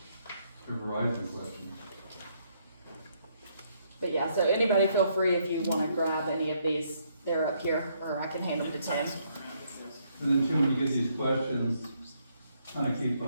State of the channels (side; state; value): both; inverted; correlation -0.72